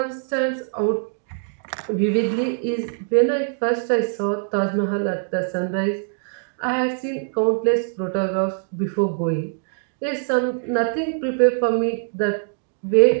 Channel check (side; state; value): left; silent; digital silence